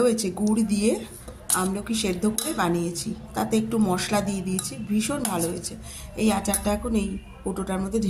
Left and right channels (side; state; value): both; identical; correlation 1.00